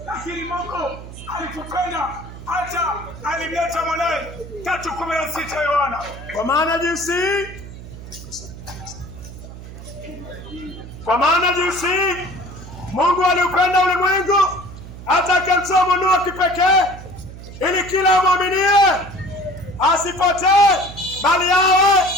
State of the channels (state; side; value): noise; right; hum, 14 dB below the sound